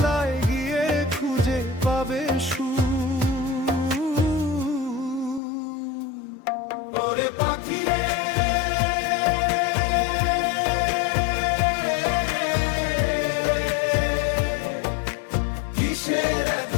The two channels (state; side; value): drops out; right; at 5.4 s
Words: গিয়ে খুঁজে পাবে ওরে পাখি রে, কিসের